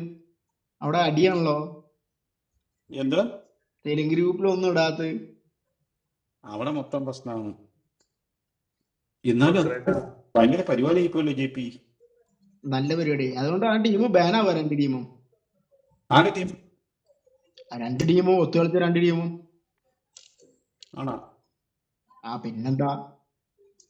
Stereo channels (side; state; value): both; identical; correlation 1.00